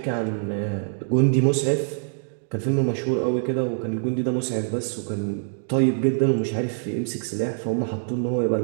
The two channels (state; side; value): silent; left; digital silence